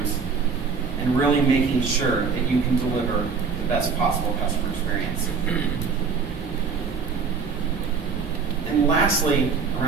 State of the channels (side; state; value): left; quieter; 5.4 dB